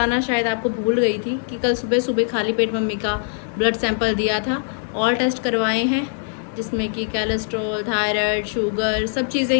शायद आपको भूल गई थी कि कल सुबह सुबह खाली पेट मम्मी का ब्लड सैंपल दिया था। ऑल टेस्ट करवाए हैं जिसमें कि कोलेस्ट्रॉल, थायराइड, शुगर सब चीज़ें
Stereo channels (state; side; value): silent; right; digital silence